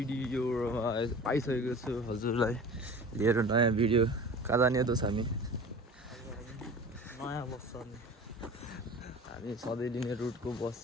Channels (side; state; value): both; normal; correlation 0.39